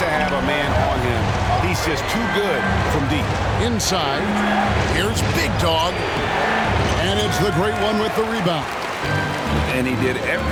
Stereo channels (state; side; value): identical; both; correlation 1.00